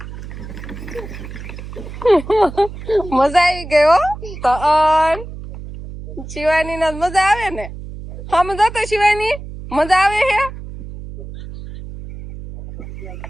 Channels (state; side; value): noise; right; hum, 12 dB below the sound